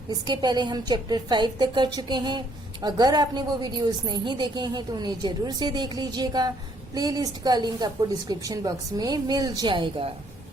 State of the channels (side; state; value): both; normal; correlation 0.66